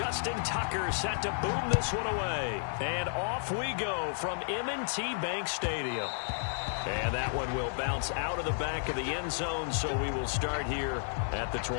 Tucker set to boom this one away. And off we go from M&T Bank Stadium. And that one will bounce out of the back of the end zone, so we will start here at the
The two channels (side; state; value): right; silent; 56 dB below the other